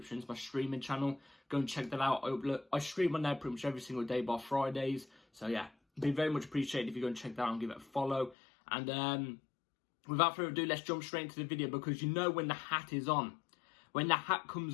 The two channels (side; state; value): right; drops out; at 8.3 s